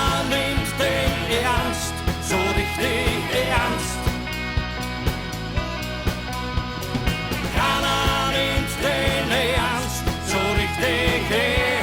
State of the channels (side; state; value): both; identical; correlation 1.00